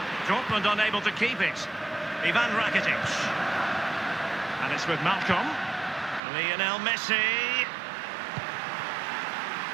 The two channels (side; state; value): left; drops out; at 6.2 s